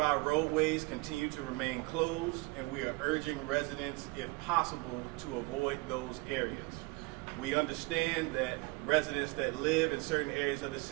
our roadways continue to remain closed, and we are urging residents, if possible, to avoid those areas. We understand that residents that live in certain areas of the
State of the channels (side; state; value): left; quieter; 25.3 dB